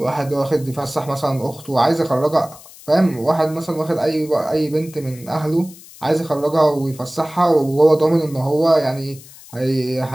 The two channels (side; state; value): left; noise; hiss, 20 dB below the sound